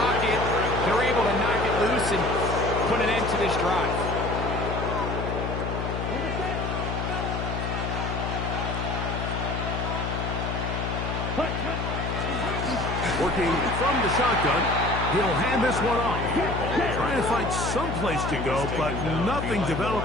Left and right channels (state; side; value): noise; left; hum, 3 dB below the sound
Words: They're able to knock it loose and put an end to this drive. Working from the shotgun, He'll hand this one off. Trying to find some place to go, but nothing